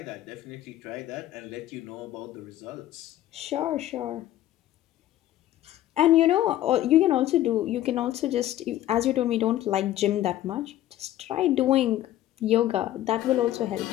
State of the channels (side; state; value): right; quieter; 13.7 dB